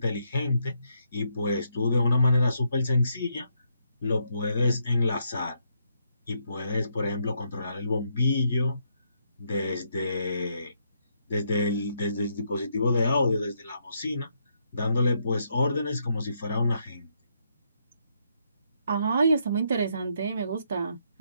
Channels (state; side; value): inverted; both; correlation -0.76